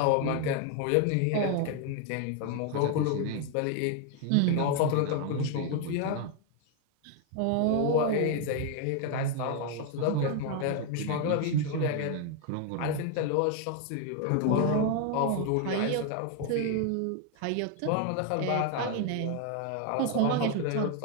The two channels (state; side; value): different; both; correlation 0.01